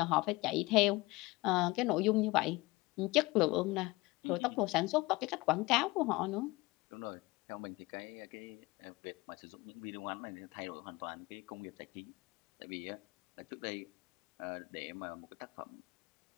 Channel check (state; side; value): quieter; right; 22.1 dB